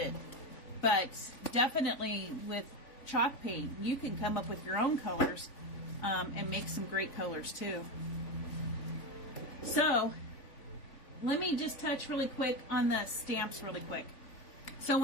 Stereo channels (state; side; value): late; right; 3.5 ms